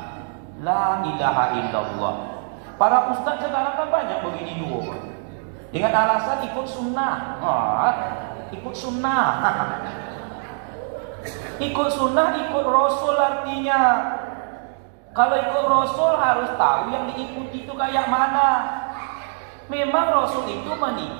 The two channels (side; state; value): left; silent; 62 dB below the other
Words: La ilaha illallah. Para ustaz sekarang kan banyak begini 2. Dengan alasan ikut sunnah. Ikut sunnah. Ikut sunnah, ikut Rasul artinya. Kalau ikut Rasul harus tahu yang diikuti itu kayak mana. Memang Rasul itu